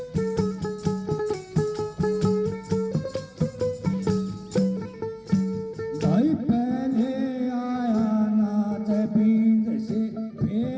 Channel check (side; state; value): both; identical; correlation 1.00